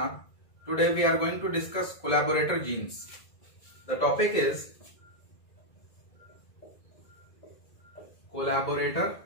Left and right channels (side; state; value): right; late; 1.9 ms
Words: Today we are going to discuss collaborator genes. The topic is collaborator